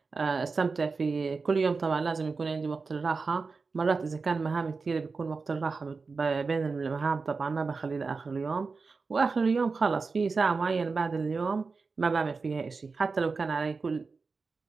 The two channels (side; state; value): left; quieter; 4.4 dB